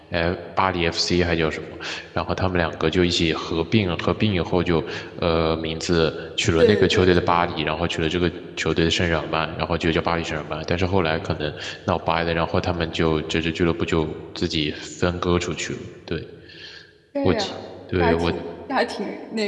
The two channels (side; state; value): both; identical; correlation 1.00